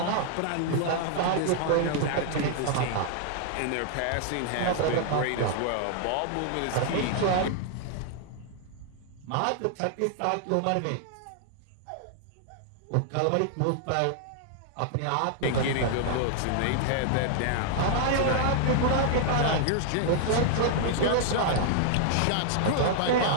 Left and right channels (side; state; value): both; different; correlation -0.01